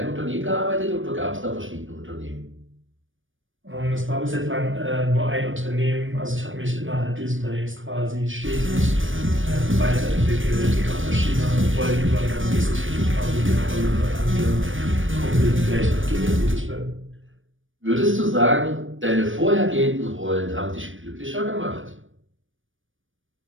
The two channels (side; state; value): left; late; 0.57 ms